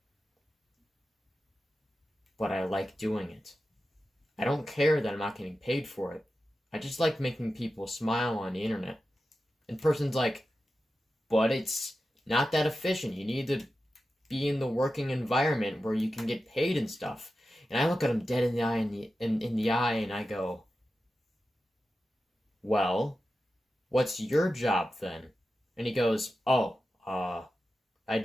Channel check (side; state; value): both; normal; correlation 0.92